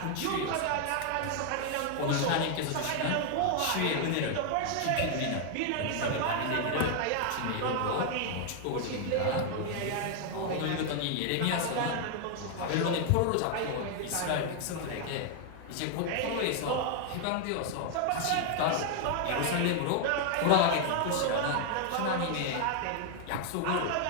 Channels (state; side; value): different; both; correlation 0.00